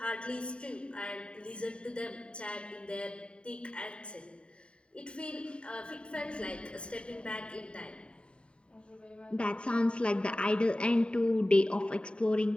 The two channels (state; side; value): late; right; 0.055 ms